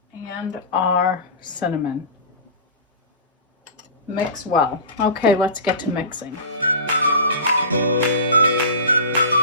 and our cinnamon. Mix well. Okay, let's get to mixing.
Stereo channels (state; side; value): inverted; both; correlation -0.30